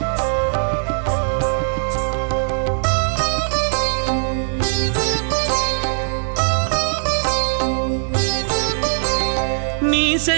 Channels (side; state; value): left; silent; digital silence